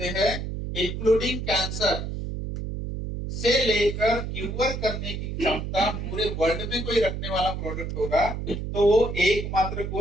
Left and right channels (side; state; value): right; noise; hum, 5 dB below the sound